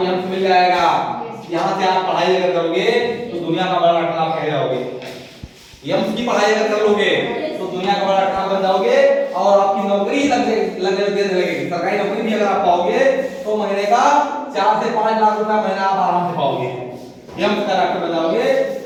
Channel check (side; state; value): both; identical; correlation 1.00